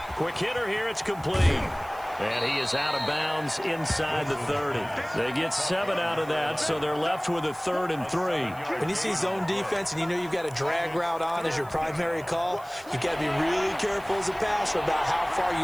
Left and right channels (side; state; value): right; noise; hiss, 23 dB below the sound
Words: Quick hitter here. It's complete. And he is out of bounds inside the 30. They get 7 out of that, so they're left with a 3rd and 3. When you see zone defense and you know you've got a drag route on as your primary call, you've got to be really careful as a passer about how far